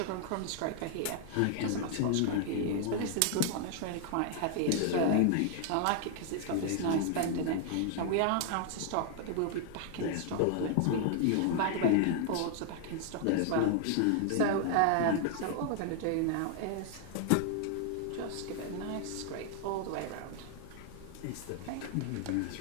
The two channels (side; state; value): both; different; correlation 0.00